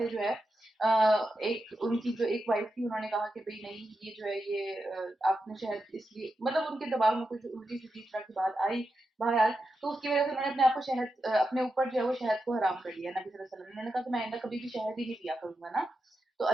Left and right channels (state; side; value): normal; both; correlation 0.88